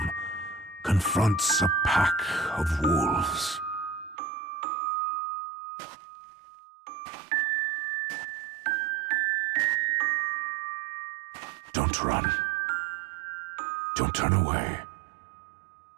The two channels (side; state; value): left; drops out; at 4.2 s